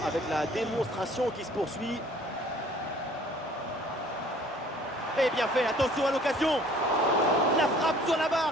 avec la démonstration qui se poursuit. Et bien fait, attention à l'occasion. La frappe sur la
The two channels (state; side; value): normal; both; correlation 0.54